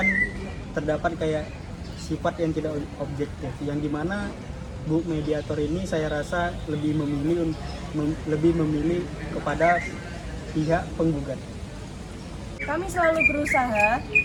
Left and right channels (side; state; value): both; identical; correlation 1.00